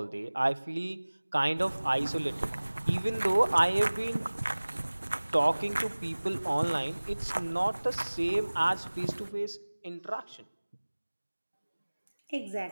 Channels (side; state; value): both; inverted; correlation -1.00